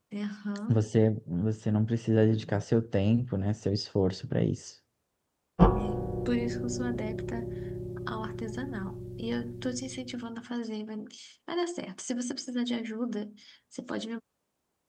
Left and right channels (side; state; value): both; identical; correlation 1.00